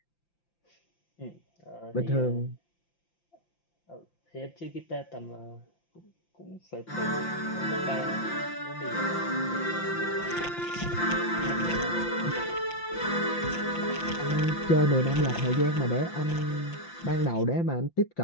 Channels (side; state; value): right; late; 5.8 ms